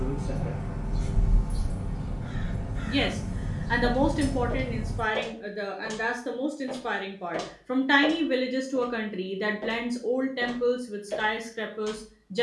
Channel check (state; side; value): identical; both; correlation 1.00